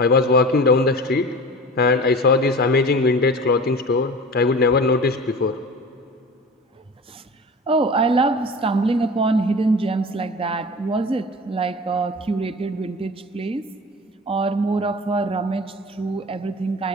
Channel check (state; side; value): normal; both; correlation 0.37